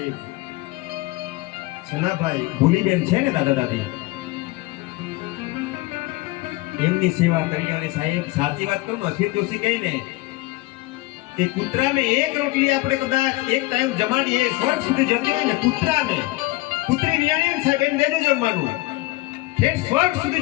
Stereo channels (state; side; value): quieter; right; 20.3 dB